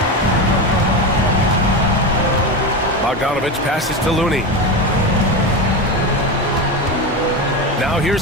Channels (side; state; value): both; normal; correlation 0.19